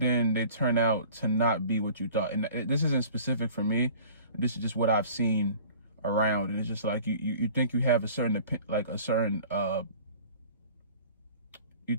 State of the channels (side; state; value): both; inverted; correlation -0.46